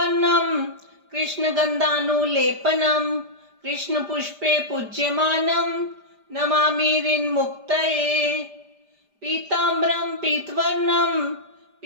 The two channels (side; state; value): left; late; 5.0 ms